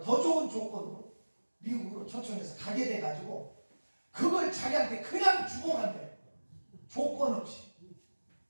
더 좋은 조건으로 미국으로 초청해서 가게 돼가지고 그걸 자기한테 그냥 주고 간대. 조건 없이.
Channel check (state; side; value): inverted; both; correlation -1.00